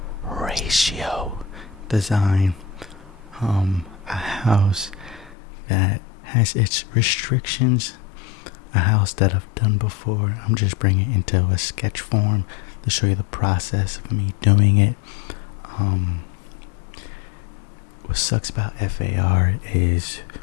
ratio design. A house that has its restrictions, a house that I've done before. I'm just bringing it into a sketch form to show you the process of me doing it. What sucks about F.A.R. is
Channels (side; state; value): right; drops out; at 5.4 s